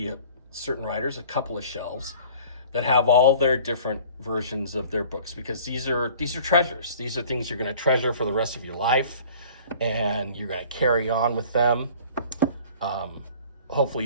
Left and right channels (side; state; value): both; inverted; correlation -0.48